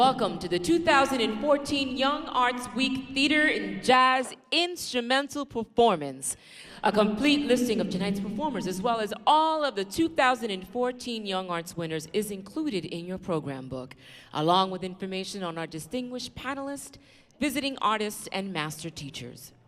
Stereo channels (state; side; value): identical; both; correlation 1.00